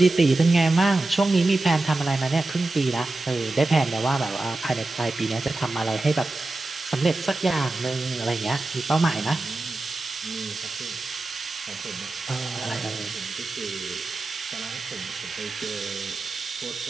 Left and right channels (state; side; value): quieter; left; 3.0 dB